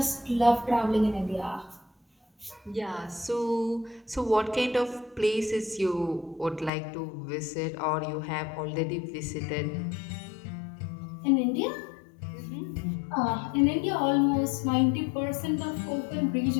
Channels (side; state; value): right; drops out; at 6.7 s